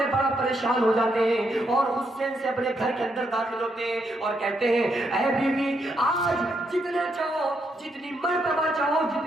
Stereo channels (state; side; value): normal; both; correlation 0.78